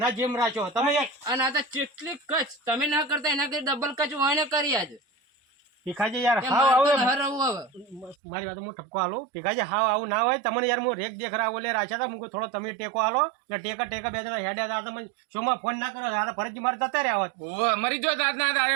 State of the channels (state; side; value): drops out; left; at 8.2 s